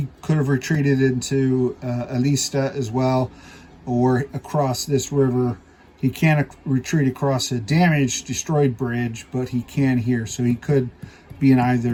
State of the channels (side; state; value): both; identical; correlation 1.00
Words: could have retreated into Elista as well, or across this river. He can't retreat across a damaged, destroyed bridge, but he can here, so he could be in